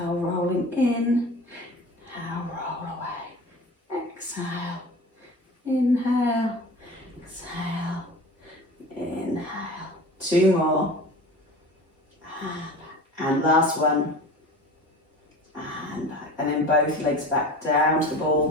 rolling in. Inhale, 2 more. And last one. And back. And then both legs back down to the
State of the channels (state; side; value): normal; both; correlation 0.37